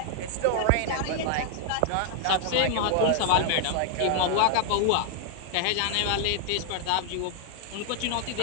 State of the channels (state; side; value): different; both; correlation 0.00